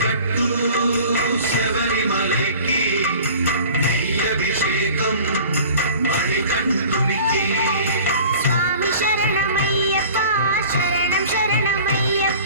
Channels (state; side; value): inverted; both; correlation -0.43